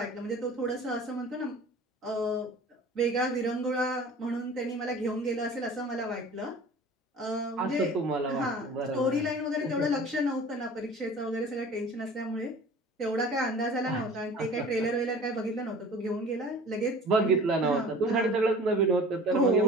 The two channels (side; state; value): both; normal; correlation 0.43